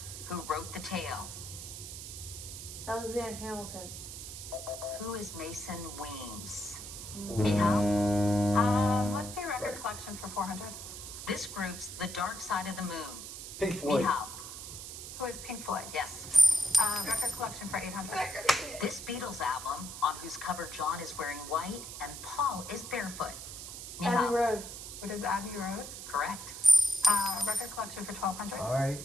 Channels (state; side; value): noise; right; hiss, 10 dB below the sound